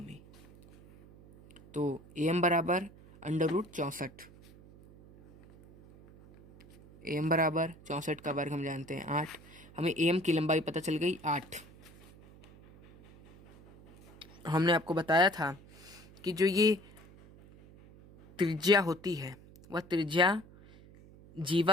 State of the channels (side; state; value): right; noise; hum, 22 dB below the sound